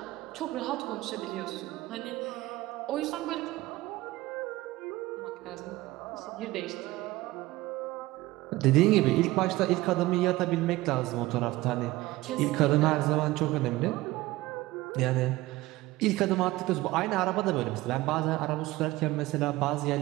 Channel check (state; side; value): quieter; left; 18.5 dB